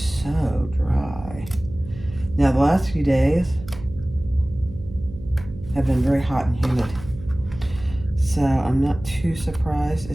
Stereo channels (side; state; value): right; noise; hum, 15 dB below the sound